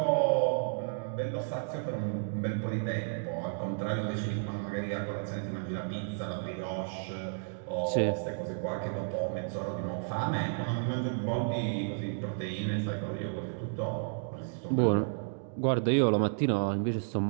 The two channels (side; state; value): left; silent; digital silence